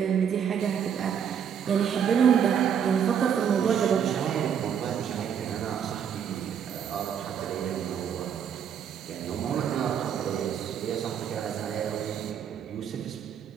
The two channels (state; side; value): quieter; left; 8.1 dB